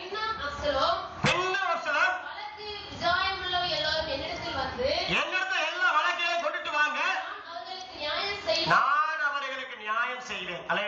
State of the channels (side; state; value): both; identical; correlation 1.00